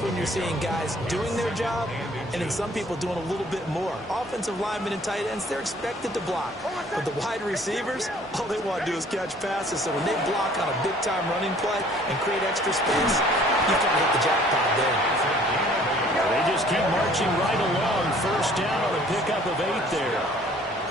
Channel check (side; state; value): both; normal; correlation 0.56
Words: when you're seeing guys doing their job and then some people doing a little bit more. Offensive linemen and tight ends, they're expected to block. But the wide receivers, all they want to do is catch passes. So when they block on a big-time running play and create extra space, you can hit the jackpot there. They just keep marching right along. First down on a pickup of 8 there.